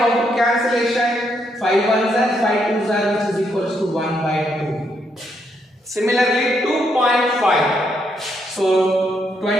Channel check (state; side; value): normal; both; correlation 0.76